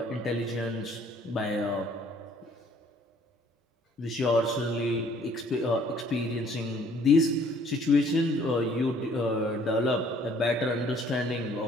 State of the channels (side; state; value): both; normal; correlation 0.59